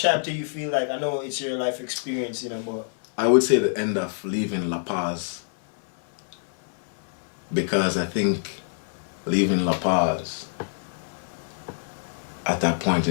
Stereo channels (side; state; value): right; silent; 61 dB below the other